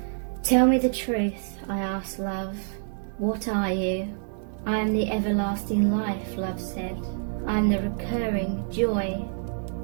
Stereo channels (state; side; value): silent; left; 57 dB below the other